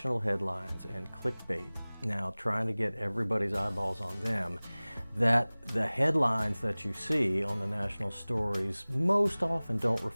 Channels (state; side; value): inverted; both; correlation -1.00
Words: headlines and clickbait, now trying to get everybody's eyeballs on them, that the headlines that you see on the national stories most often don't